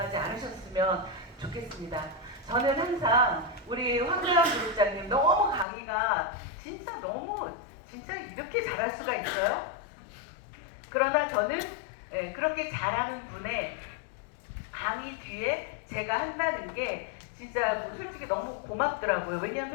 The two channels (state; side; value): drops out; right; at 5.7 s